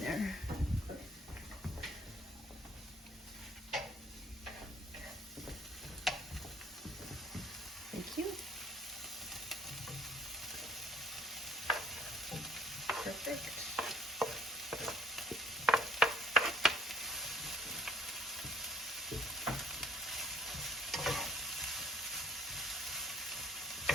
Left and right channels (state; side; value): normal; both; correlation 0.60